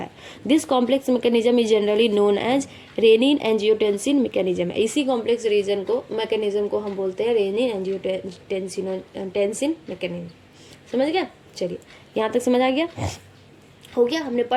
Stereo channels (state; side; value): identical; both; correlation 1.00